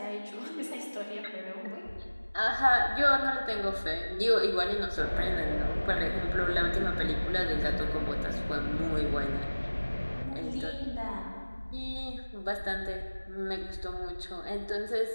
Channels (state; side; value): inverted; both; correlation -1.00